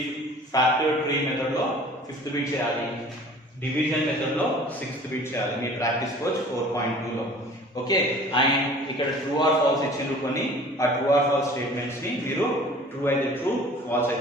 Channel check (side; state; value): both; normal; correlation 0.47